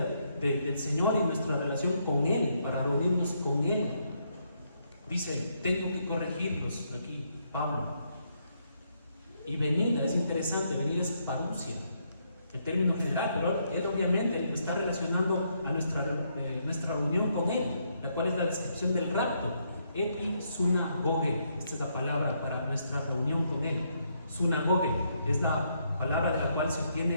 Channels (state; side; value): inverted; both; correlation -0.75